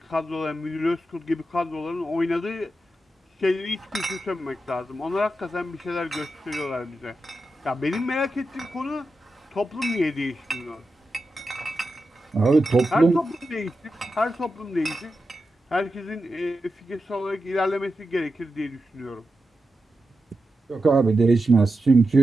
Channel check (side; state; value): both; normal; correlation 0.89